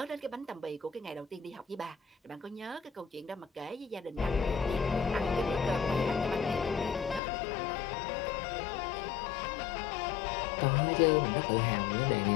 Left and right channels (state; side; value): drops out; right; at 7.2 s